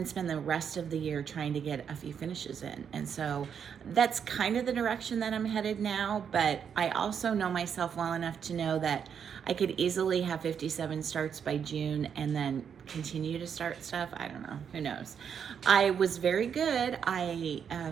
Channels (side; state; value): left; quieter; 7.5 dB